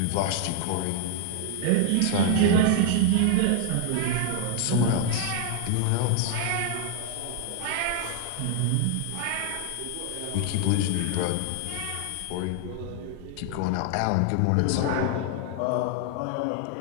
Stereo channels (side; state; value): both; different; correlation 0.00